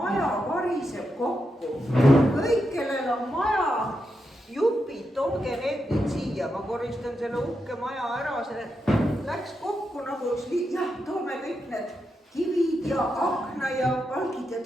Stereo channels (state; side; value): normal; both; correlation 0.85